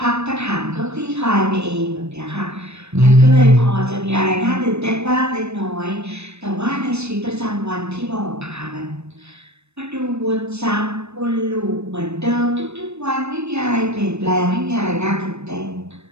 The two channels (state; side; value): late; left; 0.81 ms